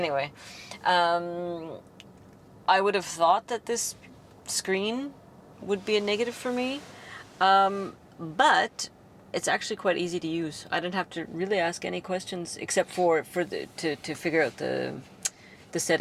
I would have thought that this screen would be a negative for me, but it's actually quite easy to use. I didn't have to really ask any questions except to figure out the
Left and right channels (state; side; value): identical; both; correlation 1.00